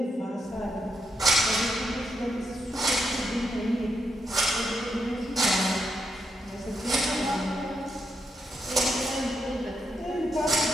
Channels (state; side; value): normal; both; correlation 0.81